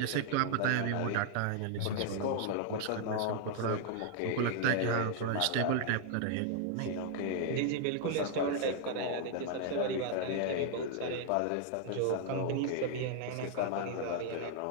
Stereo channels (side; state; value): both; different; correlation -0.01